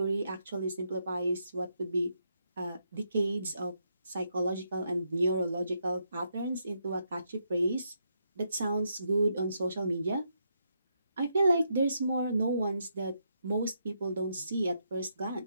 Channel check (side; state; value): both; inverted; correlation -0.79